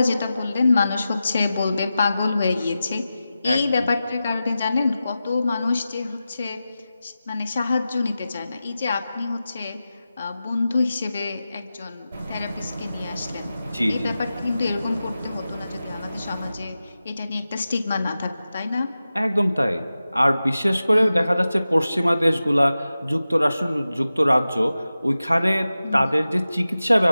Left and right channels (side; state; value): both; inverted; correlation -0.94